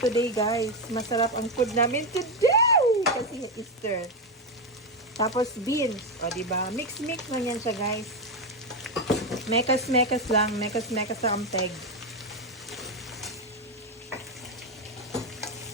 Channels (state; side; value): normal; both; correlation 0.09